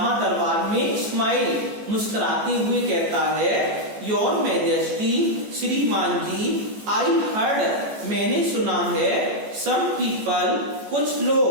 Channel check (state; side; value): late; left; 14 ms